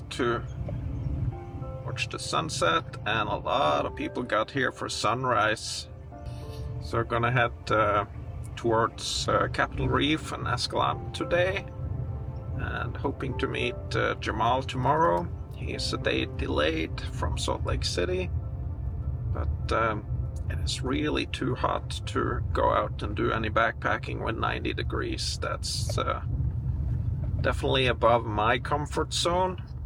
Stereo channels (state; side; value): identical; both; correlation 1.00